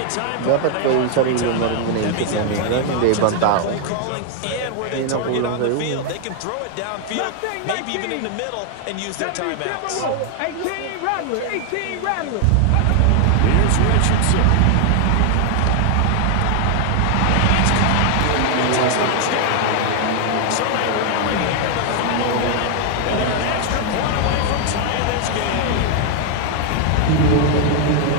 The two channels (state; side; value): different; both; correlation 0.00